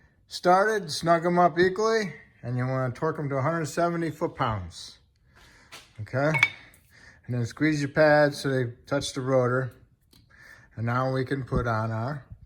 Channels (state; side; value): identical; both; correlation 1.00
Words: started, snug them up equally, and you want to torque them to 170 foot-pounds. Okay? And then squeeze your pads so they touch the rotor. And now we can put on our